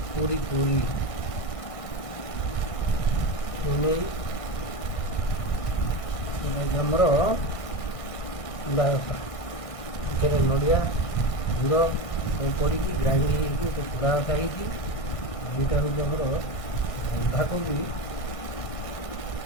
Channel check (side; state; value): right; late; 1.6 ms